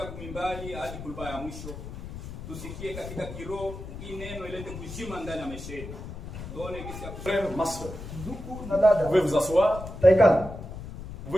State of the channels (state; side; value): noise; left; rumble, 10 dB below the sound